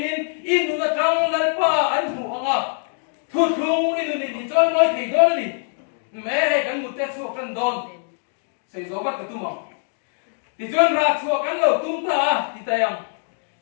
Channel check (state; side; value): silent; right; digital silence